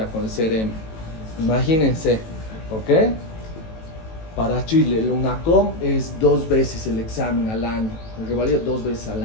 con el CRM. Imagínense, ¿ok? Para Chile, el UNACOM es 2 veces el examen al año, el revalida 2 veces al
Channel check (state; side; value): late; right; 18 ms